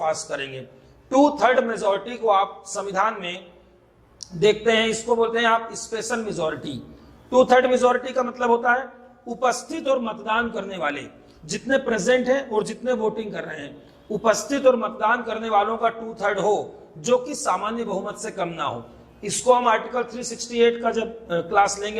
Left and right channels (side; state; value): both; identical; correlation 1.00